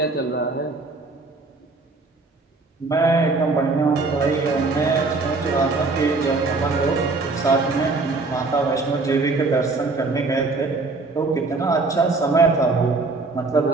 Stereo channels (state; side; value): quieter; left; 3.7 dB